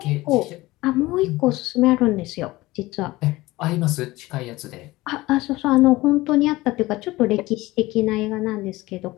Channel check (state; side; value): quieter; right; 19.3 dB